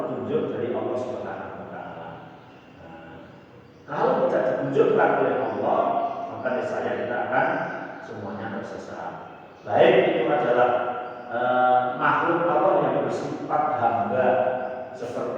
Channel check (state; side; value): identical; both; correlation 1.00